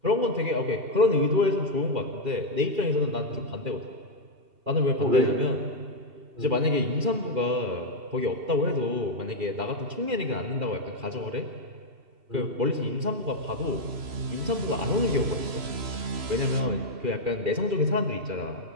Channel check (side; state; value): left; late; 3.0 ms